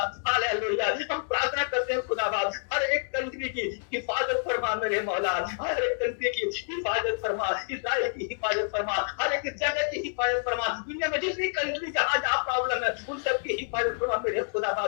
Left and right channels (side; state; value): right; silent; digital silence